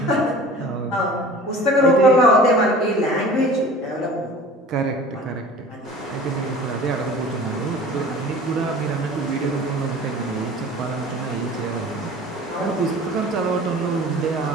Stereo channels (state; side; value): normal; both; correlation 0.42